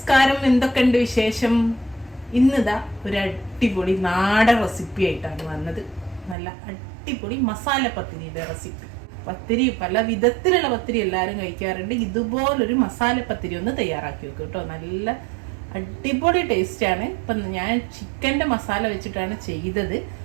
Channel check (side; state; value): left; drops out; at 6.4 s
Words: എന്തൊക്കെയുണ്ട് വിശേഷം? ഇന്നിതാ ഒരു അടിപൊളി നാടൻ റെസിപ്പി ആയിട്ടാണ് വന്നത്. നല്ല അടിപൊളി മസാല പത്തിരിയുടെ റെസിപ്പി. പത്തിരി പല വിധത്തിലുള്ള പത്തിരി എല്ലാവരും കഴിക്കാറുണ്ട്. ഇതുപോലൊരു മസാല പത്തിരി ഒന്ന് തയ്യാറാക്കി വെക്കും കേട്ടോ. നല്ല അടിപൊളി ടേസ്റ്റാണ്. ഇപ്പം ഞാൻ ചിക്കൻ്റെ മസാല വെച്ചിട്ടാണ് ചെയ്തത്.